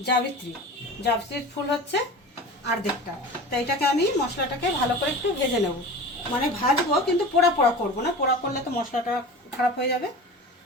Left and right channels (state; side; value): normal; both; correlation 0.34